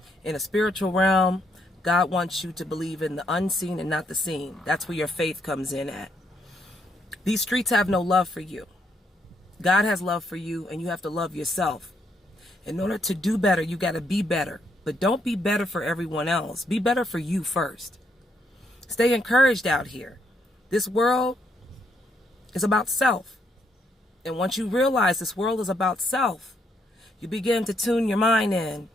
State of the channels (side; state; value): both; normal; correlation 0.75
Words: in a spiritual realm, God wants you to believe in the unseen and not the seen. That's where your faith comes in at. These streets have no love for you. God has love for you, and you have to love yourself. In order to do better, you got to be better. But don't be better for everyone else. Be better for you first. Stay encouraged out here. This world is about self. And once you realize this world is about self, you begin to tune your mind in